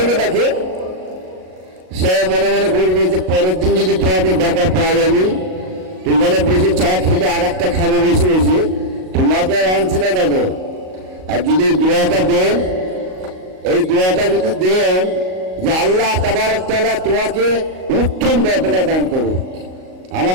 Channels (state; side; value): late; left; 38 ms